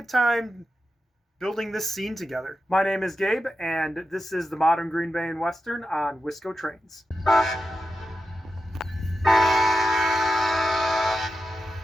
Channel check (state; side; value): normal; both; correlation 0.90